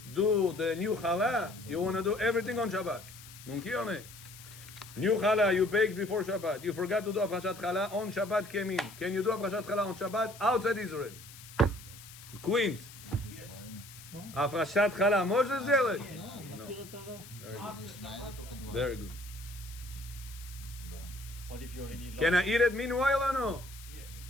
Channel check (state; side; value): noise; left; hiss, 17 dB below the sound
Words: do the new challah, you want to do everything on Shabbat. Mumki or nahi? New challah you baked before Shabbat. You forgot to do הפרשת challah on Shabbat came in. Can you do הפרשת challah on Shabbat outside Israel? Queens. Yes. הפרשת challah, Moshe zealot? Very good. What if you're in Iran? Can I eat it meanwhile or no? Yes.